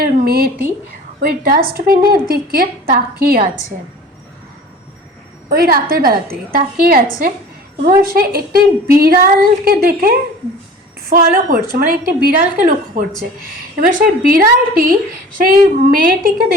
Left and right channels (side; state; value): both; normal; correlation 0.42